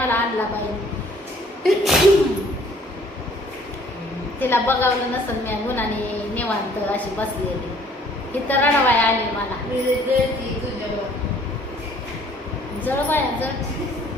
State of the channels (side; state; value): both; normal; correlation 0.58